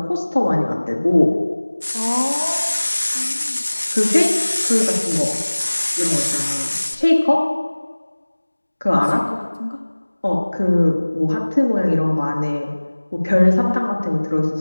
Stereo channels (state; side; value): inverted; both; correlation -1.00